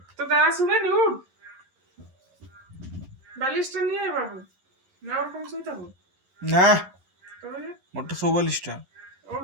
তো দাঁড়া শুনে নি উঠ বালিশটা নিয়ে আয় বাবু না ওরকম শুয়ে থাকো না তবে মোটর 44টা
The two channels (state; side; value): late; left; 11 ms